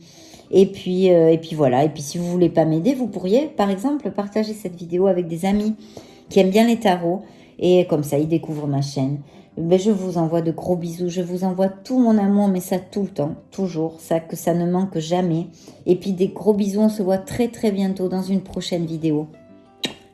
Et puis voilà. Et puis si vous voulez pas m'aider, vous pourriez par exemple partager cette vidéo avec des amis qui aiment bien les tarots. Et comme ça, ils découvrent ma chaîne. Ben, je vous envoie de gros bisous. Je vous envoie tout mon amour, mais ça tout le temps, toujours. Ça, que ça ne manque jamais. Et puis des gros bisous. On se voit très très bientôt dans une prochaine vidéo.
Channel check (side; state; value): both; identical; correlation 1.00